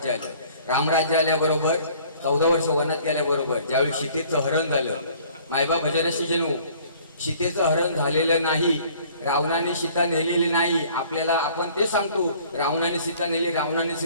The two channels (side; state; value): both; inverted; correlation -0.54